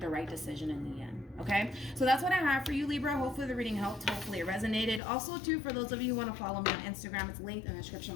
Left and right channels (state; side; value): drops out; right; at 5.0 s